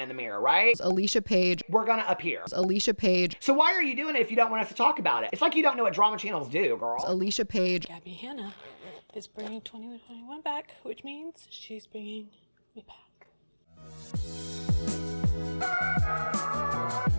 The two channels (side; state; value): both; inverted; correlation -1.00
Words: the mirror, right? Alicia Page. We're gonna appear. Alicia Page. So why are you doing it if you don't want us to talk about it? It's like you don't know what drama channels do, girl. Alicia Page. Gabbie Hanna is bringing 2021 back, which means she's bringing me back.